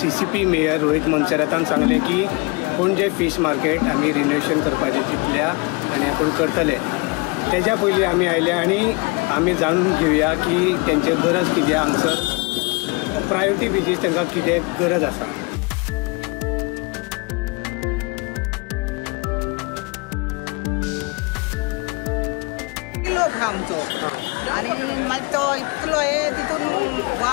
CCP मेयर रोहित मोन्सेरातान सांगलें की पणजे फीश मार्केट आमी रिनोवेशन करपाचें चिंतल्या आनी आपूण करतले. तेज्या पयलीं आमी आयल्या आनी आमी जाणून घेवया की तेंचे गरज कितें, हांगसर प्रायोरिटी बेजीस तांकां कितें गरज आसा. आमचो आनी मागीर तो इतलो तितून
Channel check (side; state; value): right; quieter; 28.5 dB